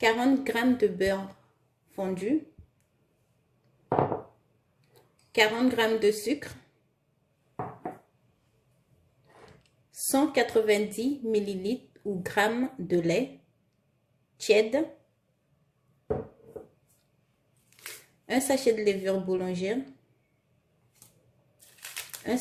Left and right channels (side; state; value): both; identical; correlation 1.00